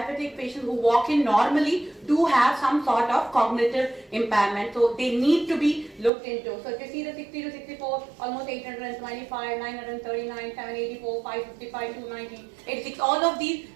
patients who walk in normally do have some sort of cognitive impairment, so they need to be looked into. So if you see the 60 to 64, almost 825, 939, 784, 555, 290, 86, all of these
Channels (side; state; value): left; drops out; at 6.1 s